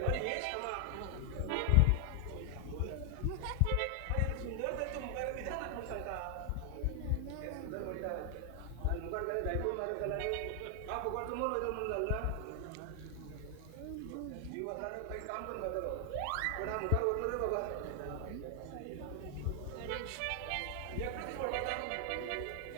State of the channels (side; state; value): both; different; correlation 0.00